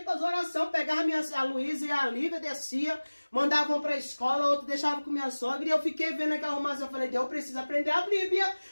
a fazer oração, pegava a Luísa e a Lívia, descia, mandavam para a escola, outro deixava com minha sogra. E eu fiquei vendo aquela arrumação. Eu falei, Deus, eu preciso aprender a Bíblia.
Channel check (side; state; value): both; inverted; correlation -1.00